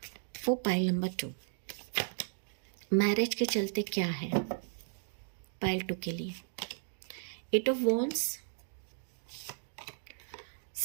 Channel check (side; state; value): left; silent; digital silence